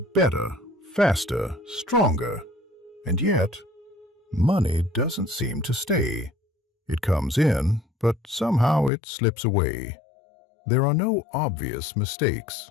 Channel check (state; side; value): drops out; right; at 8.9 s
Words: faster, stronger, and yet, money doesn't seem to stay. It comes in, but somehow it slips away. There are no obvious mistakes,